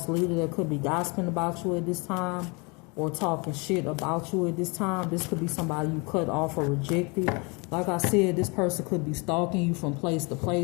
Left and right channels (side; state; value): right; quieter; 29.9 dB